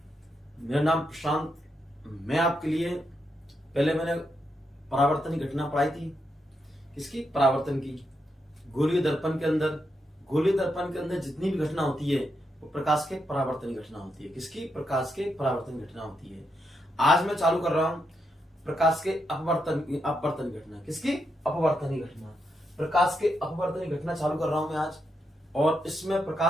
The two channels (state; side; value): normal; both; correlation 0.82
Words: मेरा नाम प्रशांत। मैं आपके लिए पहले मैंने परावर्तन की घटना पढ़ाई थी। किसकी? परावर्तन की। गोलीय दर्पण के अंदर जितनी भी घटना होती है वो प्रकाश के परावर्तन की घटना होती है। किसकी? प्रकाश के परावर्तन की घटना होती है। आज मैं चालू कर रहा हूं प्रकाश के अपवर्तन की घटना। किसकी? अपवर्तन की घटना। प्रकाश के अपवर्तन की घटना चालू कर रहा हूं मैं आज। और इसमें